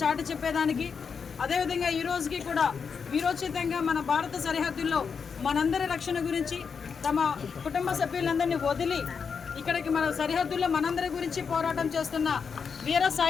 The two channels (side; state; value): right; quieter; 6.0 dB